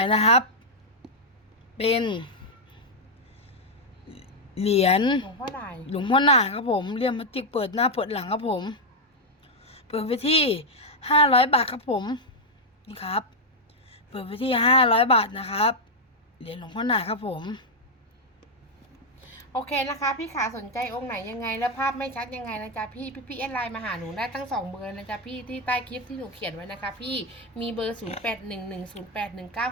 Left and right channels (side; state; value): both; normal; correlation 0.00